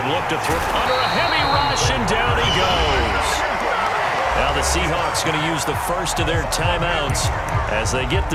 look to throw under a heavy rush, and down he goes. Now the Seahawks going to use the first of their timeouts as they get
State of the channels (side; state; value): both; identical; correlation 1.00